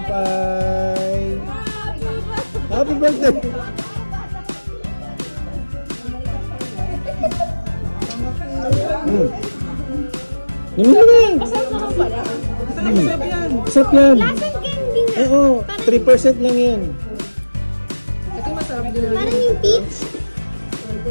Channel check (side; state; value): both; inverted; correlation -1.00